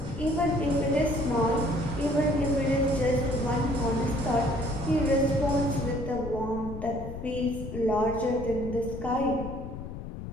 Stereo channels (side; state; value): left; noise; rumble, 9 dB below the sound